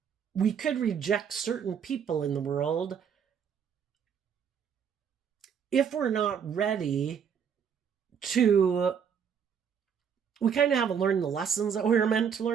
we could reject certain people in the world if we're not ready to, we kind of haven't learned the lessons that we were meant to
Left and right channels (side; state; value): left; quieter; 7.4 dB